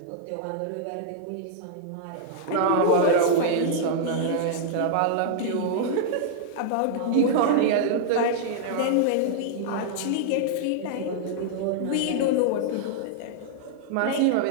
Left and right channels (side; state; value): both; different; correlation -0.01